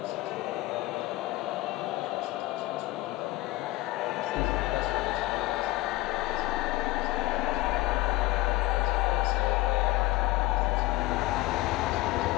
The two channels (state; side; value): quieter; right; 18.6 dB